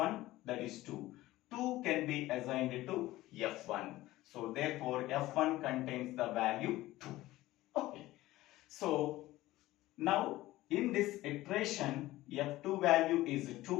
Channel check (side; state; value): right; quieter; 17.0 dB